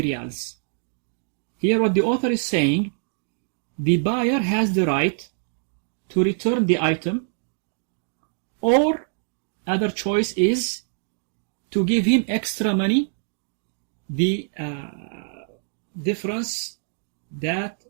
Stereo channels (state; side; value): silent; left; digital silence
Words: riyals. Here what the author is saying, the buyer has the right to return the item, or other choice is to give him extra money, the difference that